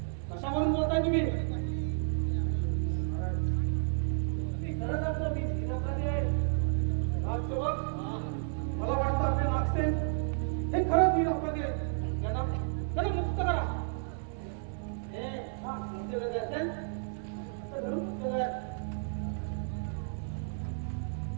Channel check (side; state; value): left; silent; 56 dB below the other